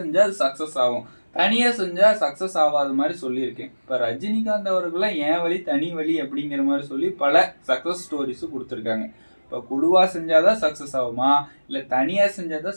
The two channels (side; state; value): both; inverted; correlation -1.00